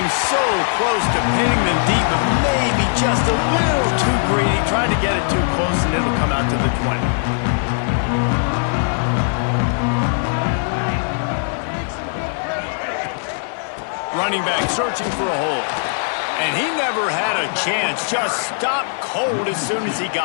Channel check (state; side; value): silent; right; digital silence